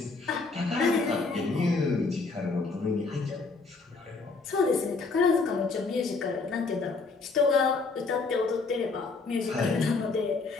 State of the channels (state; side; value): quieter; right; 4.1 dB